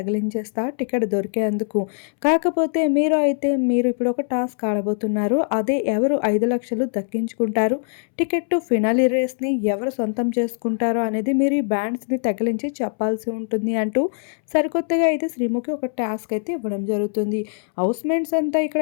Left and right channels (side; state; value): right; silent; 64 dB below the other